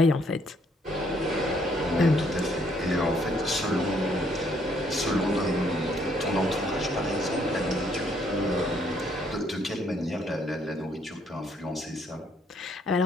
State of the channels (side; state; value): both; normal; correlation 0.68